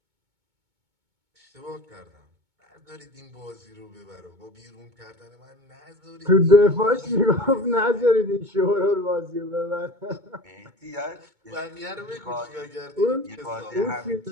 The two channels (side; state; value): left; late; 2.2 ms